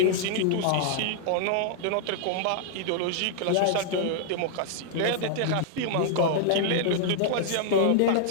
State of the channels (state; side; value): different; both; correlation -0.01